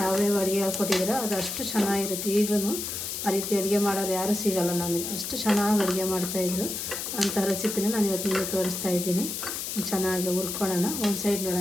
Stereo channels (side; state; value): left; noise; hiss, 5 dB below the sound